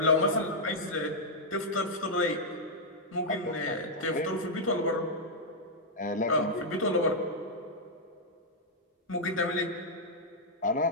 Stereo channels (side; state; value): both; normal; correlation -0.05